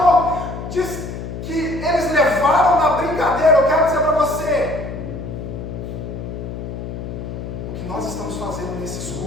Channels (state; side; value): noise; left; hum, 7 dB below the sound